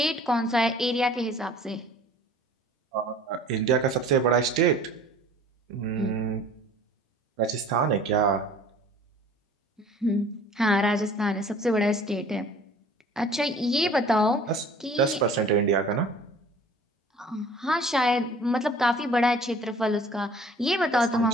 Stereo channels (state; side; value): normal; both; correlation 0.49